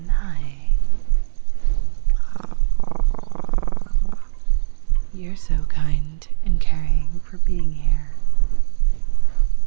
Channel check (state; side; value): silent; left; digital silence